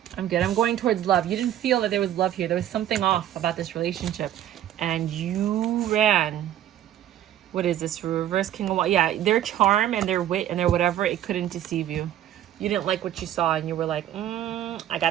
I'm good. I'm going towards love. You didn't feel that there was love here. There was something off about this relationship. And you ran. What is this? Reverse King of Wands. Yeah, their charm and their wit and their whatever, it couldn't deceive you. You didn't like what you saw and you were like, I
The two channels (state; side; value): quieter; left; 11.8 dB